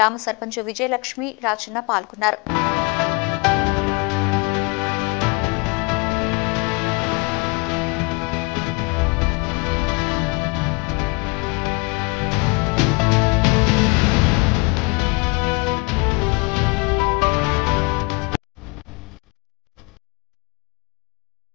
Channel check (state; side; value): quieter; right; 28.5 dB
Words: సర్పంచ్ విజయలక్ష్మి, రాజన్న పాల్గొన్నారు.